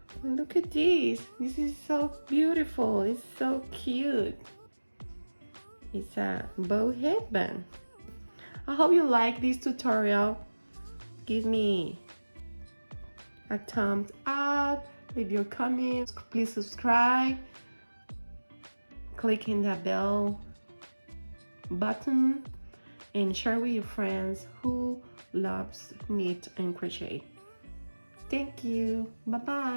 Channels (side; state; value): both; inverted; correlation -1.00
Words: And look at this. This is so beautiful. It's so cute. It's a bow headband. I hope you like this tutorial. Give me a thumbs up, leave your comments, please subscribe, click in the bell button, and share with your friends who loves knit and crochet. Thank you. Bye